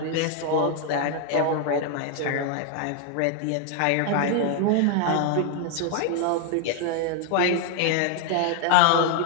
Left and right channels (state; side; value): different; both; correlation 0.00